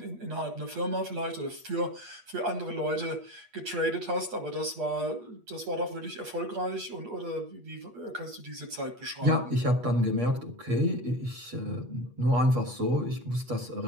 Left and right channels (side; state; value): left; late; 8.4 ms